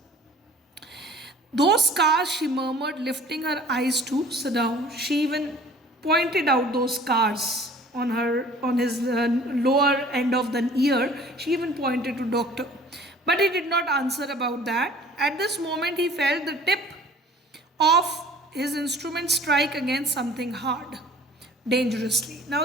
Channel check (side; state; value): both; normal; correlation 0.49